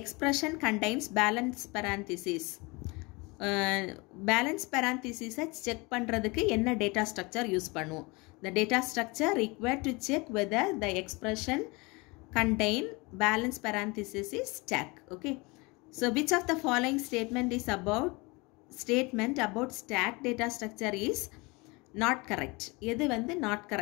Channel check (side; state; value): right; quieter; 26.2 dB